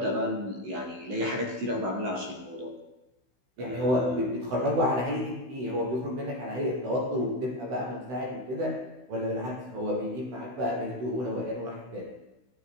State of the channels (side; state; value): left; late; 16 ms